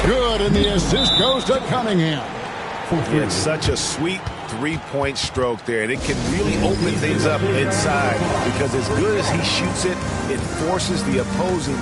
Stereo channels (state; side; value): identical; both; correlation 1.00